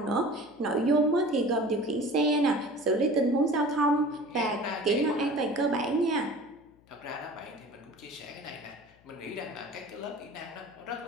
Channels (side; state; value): left; noise; hum, 30 dB below the sound